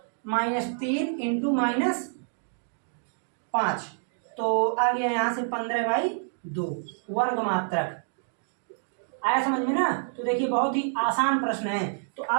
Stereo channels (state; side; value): silent; left; digital silence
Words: -3 इंटू -5, तो आ गया यहाँ से 15/2 वर्ग मात्रक। आया समझ में ना। तो देखिए बहुत ही आसान प्रश्न है, तो